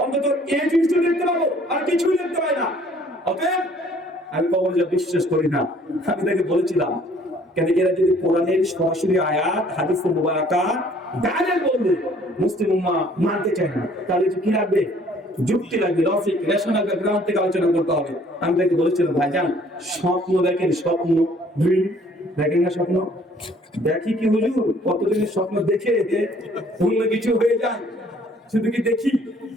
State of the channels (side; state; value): both; normal; correlation 0.58